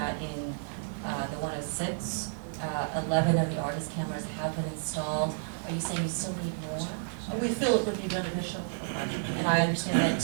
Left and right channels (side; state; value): left; silent; digital silence